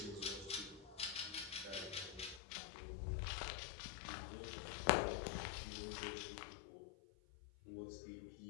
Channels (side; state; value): right; drops out; at 2.4 s